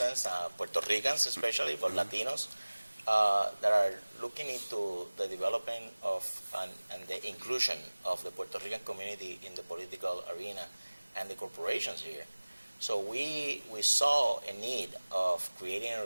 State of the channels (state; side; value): inverted; both; correlation -1.00